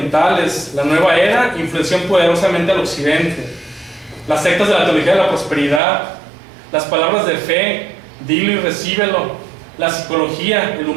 la nueva era, influenció poderosamente al occidente. Las sectas de la teología de la prosperidad, las palabras de fe, dilo y recíbelo, la psicología, el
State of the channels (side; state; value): left; drops out; at 5.8 s